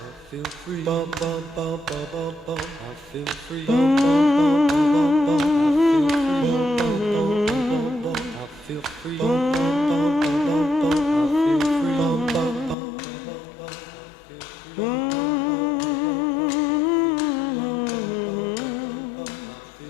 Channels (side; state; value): right; drops out; at 12.8 s